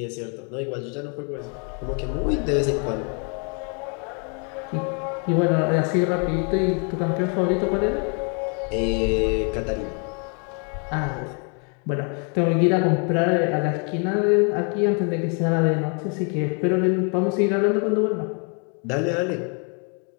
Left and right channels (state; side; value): quieter; right; 38.7 dB